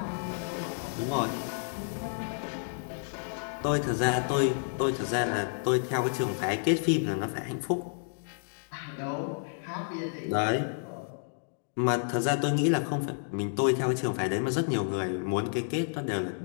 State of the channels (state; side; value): silent; right; digital silence